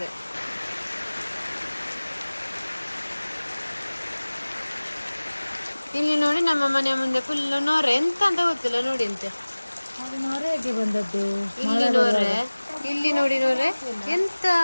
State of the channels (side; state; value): both; inverted; correlation -1.00